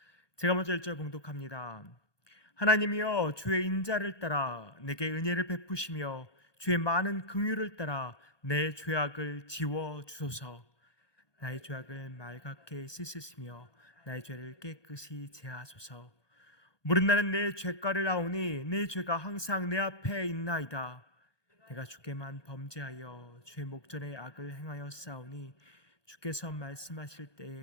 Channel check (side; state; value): right; late; 1.2 ms